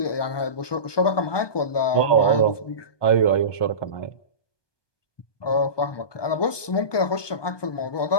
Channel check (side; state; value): right; late; 1.2 ms